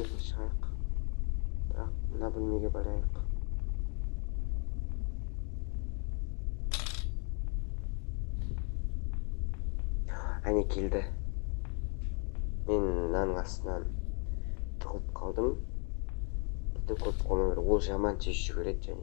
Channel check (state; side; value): quieter; right; 37.6 dB